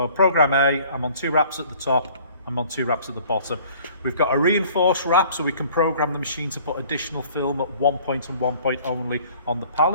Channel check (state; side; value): inverted; both; correlation -0.54